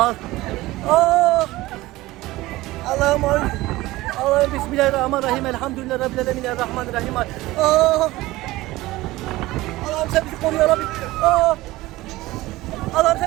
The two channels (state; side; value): quieter; left; 18.4 dB